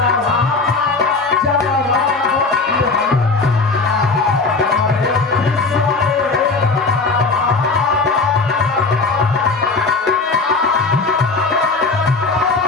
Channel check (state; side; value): quieter; right; 4.0 dB